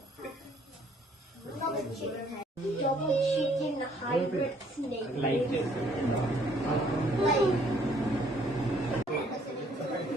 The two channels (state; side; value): normal; both; correlation 0.63